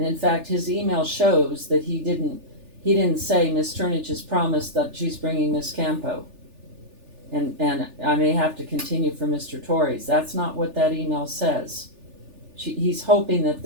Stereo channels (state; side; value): late; left; 3.4 ms